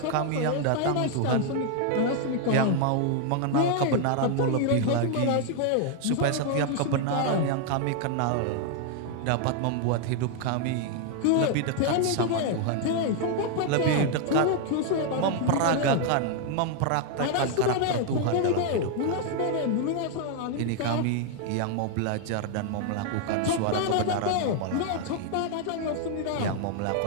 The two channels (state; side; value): different; both; correlation 0.00